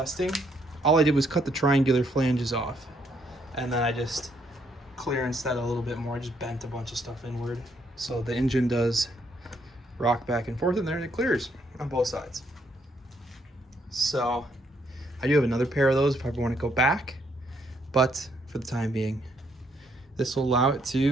All I did was cut the triangular flanges off, and then I just clearanced that a little bit more. I just bent a bunch of stuff inward, so the engine does rock back and forth in there, and it clears on both sides. So I do have another pair of those if I ever want to go back, but for the time being, this will allow it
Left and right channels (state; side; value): normal; both; correlation 0.72